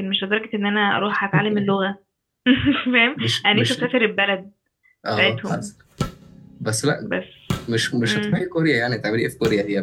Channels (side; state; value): both; identical; correlation 1.00